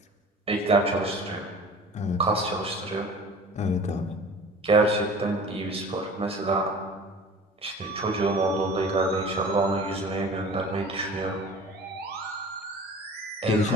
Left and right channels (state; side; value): normal; both; correlation 0.42